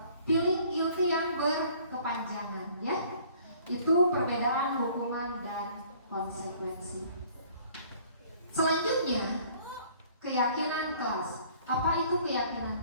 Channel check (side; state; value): both; inverted; correlation -0.55